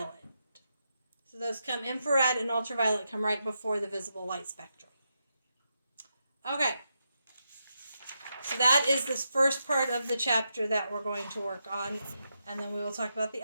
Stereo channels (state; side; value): inverted; both; correlation -0.85